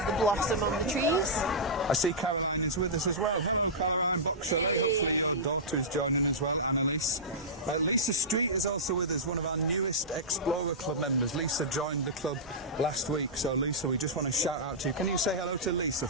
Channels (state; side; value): normal; both; correlation -0.15